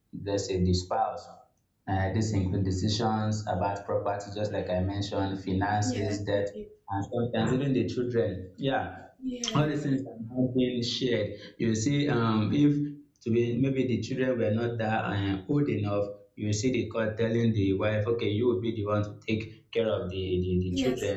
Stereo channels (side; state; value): both; identical; correlation 1.00